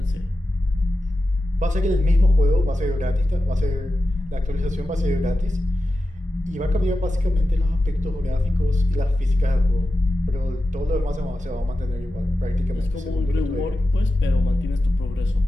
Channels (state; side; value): normal; both; correlation 0.92